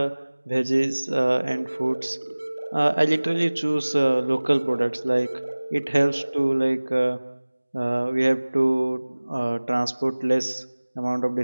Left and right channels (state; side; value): inverted; both; correlation -1.00